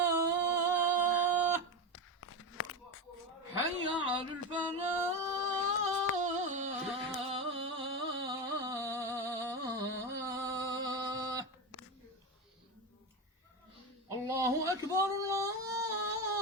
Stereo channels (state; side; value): normal; both; correlation 0.17